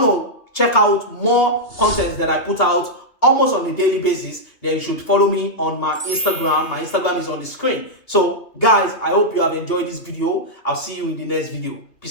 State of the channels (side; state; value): right; late; 2.8 ms